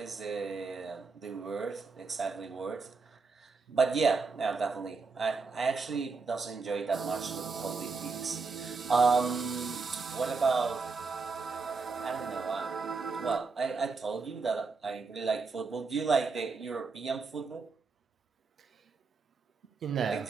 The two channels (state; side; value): quieter; left; 4.4 dB